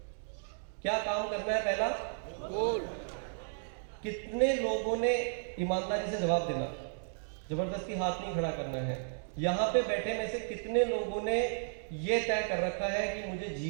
क्या काम करना है? पहला गोल। कितने लोगों ने ईमानदारी से जवाब देना, जबरदस्ती हाथ नहीं खड़ा करना है। यहां पे बैठे में से कितने लोगों ने यह तय कर रखा है कि मुझे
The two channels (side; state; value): left; silent; digital silence